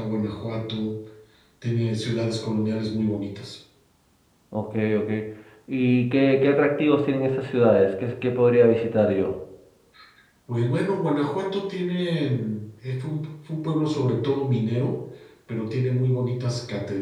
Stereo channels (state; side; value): identical; both; correlation 1.00